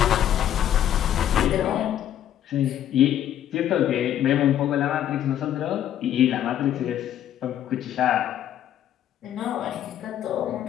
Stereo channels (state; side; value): quieter; right; 11.0 dB